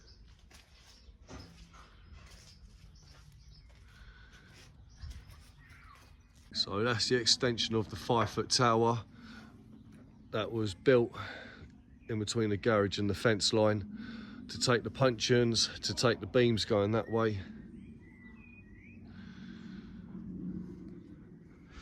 So that's the extension of the 5-foot tower that was built in between the garage and the fence line to take the puncheons, to take the beams going that way.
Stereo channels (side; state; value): both; identical; correlation 1.00